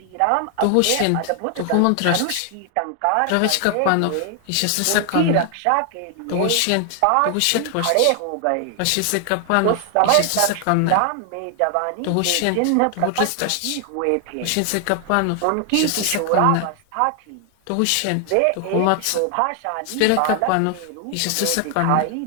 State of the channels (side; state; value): both; different; correlation 0.00